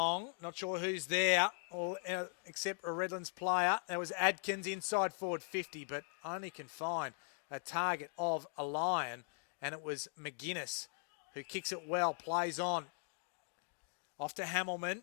Not sure who's there, except a Redlands player. There was Adkins inside forward 50, but only can find a target of a Lion, and it was McGuinness who kicks it well, plays on. Off to Hamilman.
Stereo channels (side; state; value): right; silent; 51 dB below the other